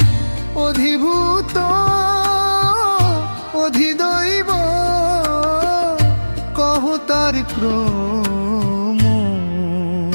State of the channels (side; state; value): both; inverted; correlation -1.00